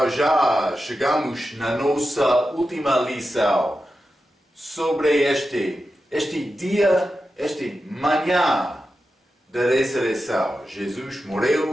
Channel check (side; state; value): both; normal; correlation 0.90